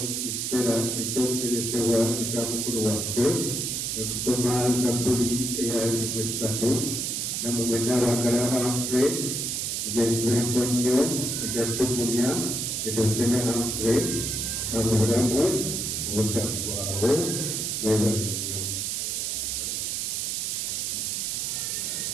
kiseera ekyokuteresebwa ekya mukulu waffe okusoma Zabbuli eya 3 namwe mwenna abaagala Humphrey egyesibeko nnyo egyatugumya edosene Humphrey mu bulamu obutaggwaawo mwebale nnyo.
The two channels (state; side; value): noise; right; hiss, 1 dB below the sound